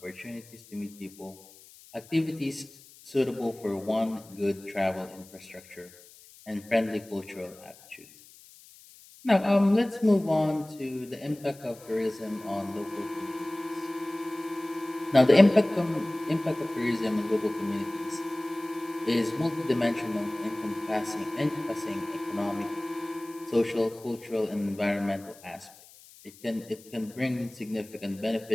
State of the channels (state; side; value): noise; left; hiss, 22 dB below the sound